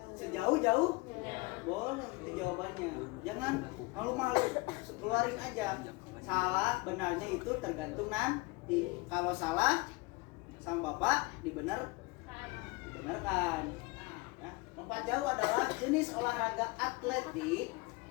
sejauh-jauh? Boleh, itu jawabannya. Jangan malu-malu, keluarin aja. Salah, benarnya itu tergantung nanti. Kalau salah, sama Bapak dibenarkan. Ya. Lompat jauh adalah jenis olahraga atletik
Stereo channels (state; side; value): quieter; right; 24.2 dB